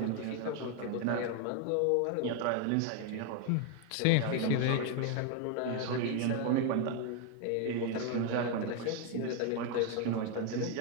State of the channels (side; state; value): both; different; correlation 0.01